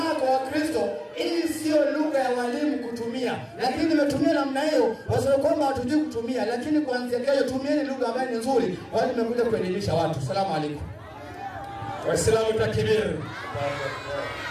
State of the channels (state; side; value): identical; both; correlation 1.00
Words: kwa Wakristo. Hii sio lugha ya walimu kutumia. Lakini nimetumia namna hiyo wasio kwamba hatujui kutumia, lakini kuanzia kesho tumieni lugha ambayo ni nzuri. Wale nimekuja kuelimisha watu. Asalamu alaykum. Waislamu takbir.